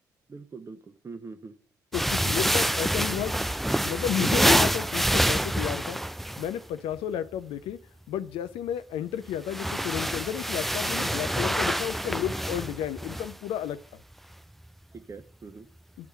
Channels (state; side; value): normal; both; correlation 0.80